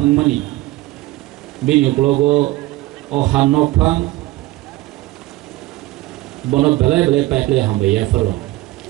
বিনি উকলগো ও হান্নক ফাং বন বেলায় বেলায় পাইপলে হামবাইয়া ফরো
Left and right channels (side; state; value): left; quieter; 18.0 dB